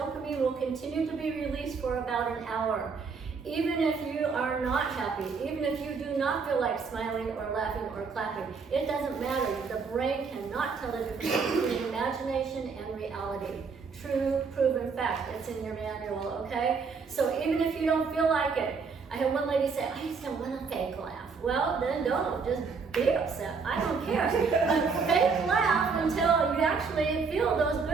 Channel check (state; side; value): quieter; left; 5.1 dB